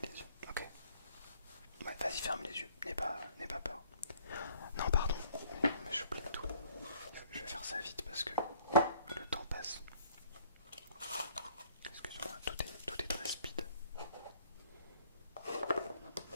les yeux, ok? Ouais, vas-y, ferme les yeux, n'aie pas peur. Non, pardon, mais j'oublie tout. Je vais faire ça vite parce que le temps passe. Excuse-moi, tout est très speed.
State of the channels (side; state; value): both; inverted; correlation -0.59